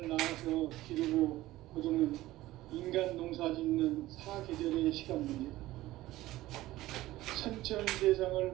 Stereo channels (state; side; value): quieter; left; 16.5 dB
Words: 낳아서 기르고 거두는 인간 농사 짓는 사계절의 시간입니다. 선천대상을